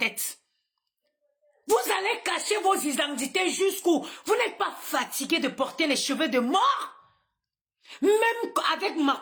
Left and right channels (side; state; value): both; identical; correlation 1.00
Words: Vous allez cacher vos identités jusqu'où? Vous n'êtes pas fatigué de porter les cheveux de mort? Même avec